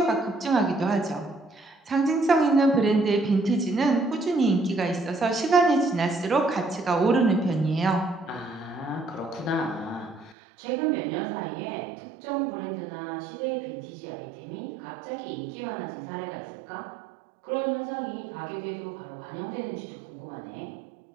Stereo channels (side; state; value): left; drops out; at 10.4 s